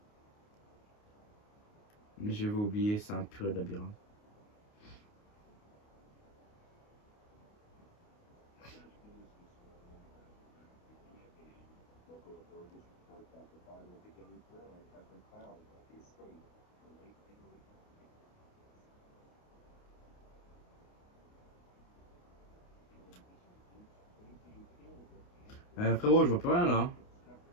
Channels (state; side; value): late; right; 29 ms